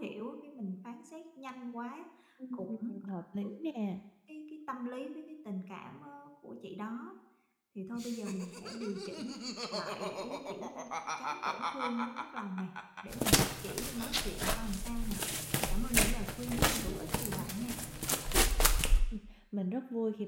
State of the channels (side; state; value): both; identical; correlation 1.00